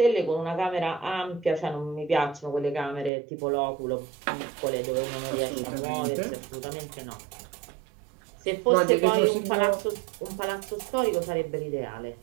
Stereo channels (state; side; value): drops out; left; at 3.1 s